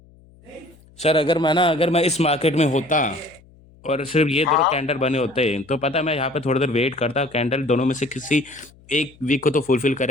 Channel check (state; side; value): noise; left; hum, 27 dB below the sound